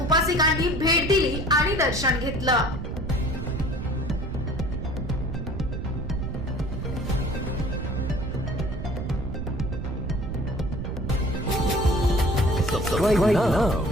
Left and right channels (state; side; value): noise; right; rumble, 6 dB below the sound